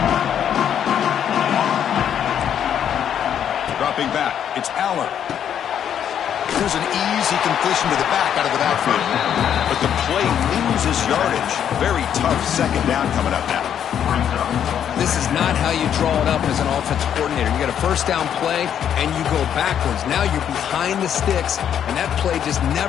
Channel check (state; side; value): quieter; right; 9.2 dB